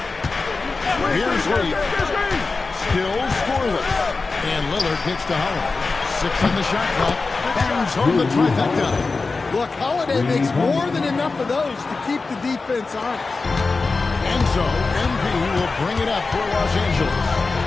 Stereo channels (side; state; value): right; quieter; 4.0 dB